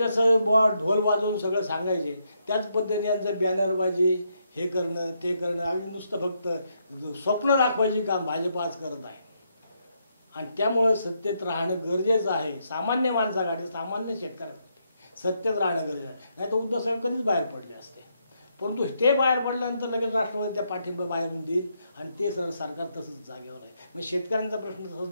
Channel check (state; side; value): inverted; both; correlation -0.78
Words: ढोल वाजवून सगळं सांगायचे त्याच पद्धतीने यांचं बॅनरबाजी हे करणं ते करणं आणि नुसतं फक्त स्वप्न दाखवायची काम भाजप आज करत आहे. आणि त्यामुळं सत्तेत राहणं गरजेचं आहे. सामान्य माणसासाठी, सामान्य शेतकऱ्यासाठी सत्तेत राहणं गरजेचं आहे. नाही तर उद्धव साहेब कधीच बाहेर पडले असते. परंतु ते बाहेर पडल्यानंतर लगेच राष्ट्रवादी त्या पाठिंबा बाहेरून देईल आणि ते सरकार तसंच जागेवर आहे. मग शेतकऱ्यांचा प्रश्न तसंच